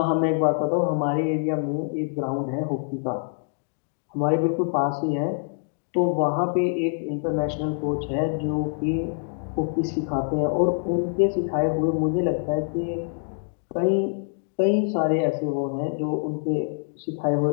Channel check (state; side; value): silent; right; digital silence